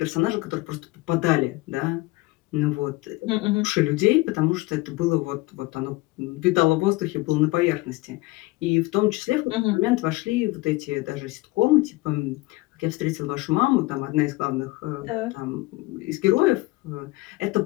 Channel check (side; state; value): right; quieter; 20.9 dB